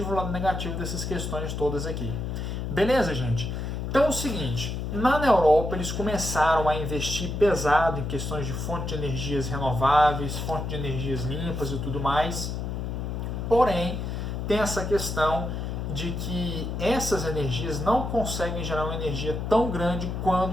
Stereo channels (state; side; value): noise; left; hum, 4 dB below the sound